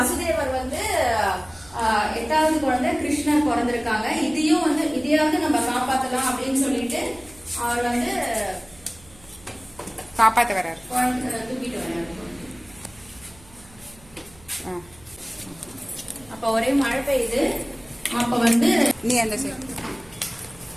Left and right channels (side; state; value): right; noise; hum, 25 dB below the sound